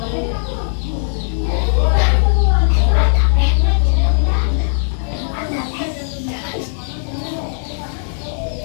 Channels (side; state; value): right; silent; digital silence